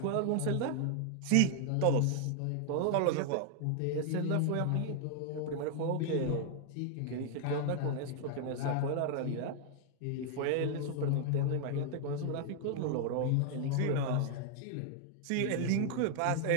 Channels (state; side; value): different; both; correlation 0.00